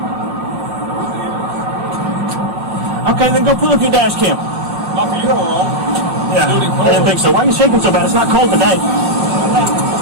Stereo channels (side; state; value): left; late; 5.1 ms